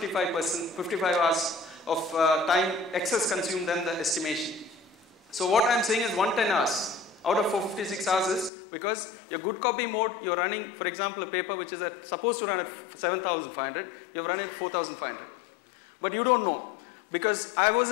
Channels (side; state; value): right; drops out; at 8.5 s